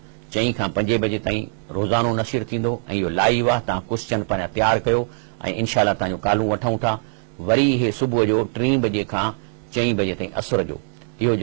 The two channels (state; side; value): silent; left; 64 dB below the other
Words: 4 खां 5 बजे ताईं रोज़ानो नशीर थींदो ऐं इहो लाइव आहे। तव्हां क्वेश्चन पंहिंजा तयारु कयो ऐं इनशाला तव्हांजो कालूं वठूं था। वरी इहे सुबुह जो 3 बजे खां 4 बजे ताईं असुर जो इहो